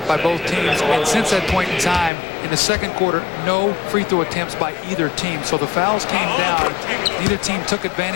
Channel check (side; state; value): right; drops out; at 2.1 s